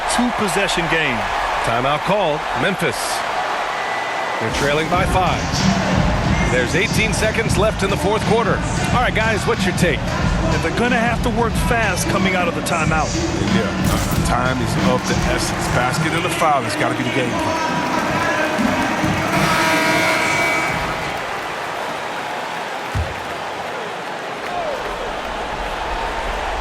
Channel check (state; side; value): identical; both; correlation 1.00